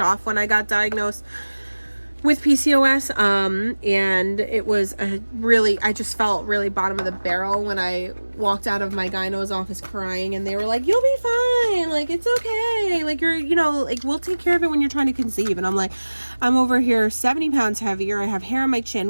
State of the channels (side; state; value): both; inverted; correlation -1.00